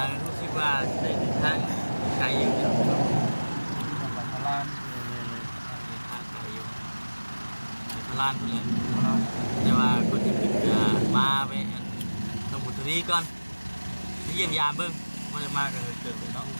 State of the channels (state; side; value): inverted; both; correlation -1.00